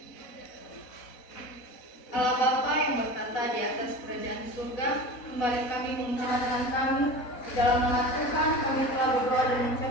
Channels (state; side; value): late; right; 4.0 ms